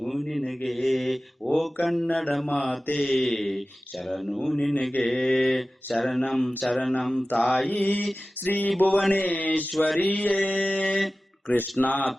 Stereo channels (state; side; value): normal; both; correlation 0.96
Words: ನಿನಗೆ, ಓ ಕನ್ನಡ ಮಾತೆ ಶರಣು ನಿನಗೆ. ಶರಣಂ ಶರಣಂ ತಾಯಿ ಶ್ರೀ ಭುವನೇಶ್ವರಿಯೇ, ಕೃಷ್ಣ